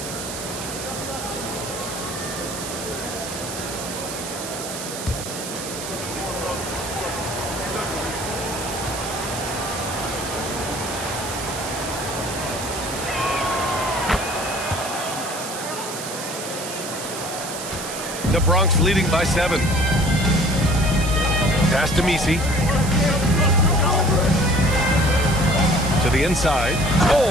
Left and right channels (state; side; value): noise; right; hiss, 8 dB below the sound